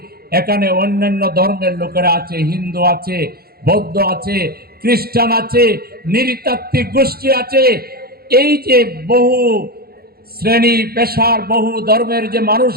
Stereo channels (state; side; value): late; left; 0.45 ms